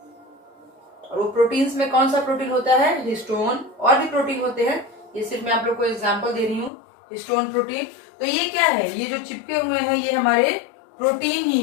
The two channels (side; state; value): right; drops out; at 6.7 s